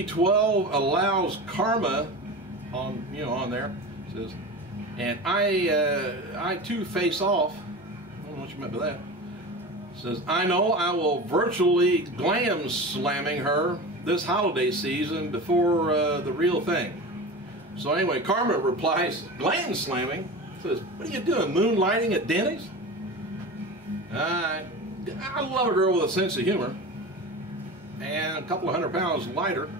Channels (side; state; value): both; normal; correlation 0.30